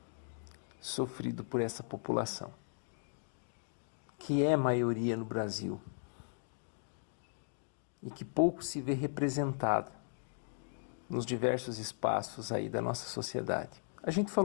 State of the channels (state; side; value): silent; right; digital silence